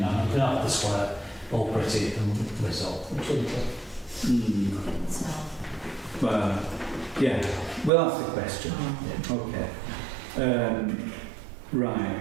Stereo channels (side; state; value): left; drops out; at 7.9 s